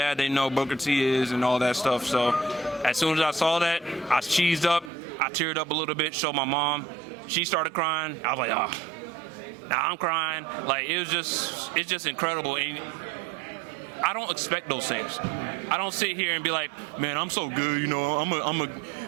they know Booker T is and all that stuff. So as soon as I saw that, I cheesed up. I teared up a little bit, showed my mom. She started crying. I was like, oh, now I'm crying. Like, it's just incredible. And I don't expect those things. I don't sit here and be like, man, I'm so good, you know,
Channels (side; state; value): left; drops out; at 4.9 s